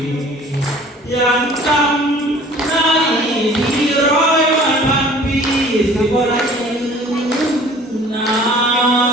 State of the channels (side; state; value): both; normal; correlation 0.49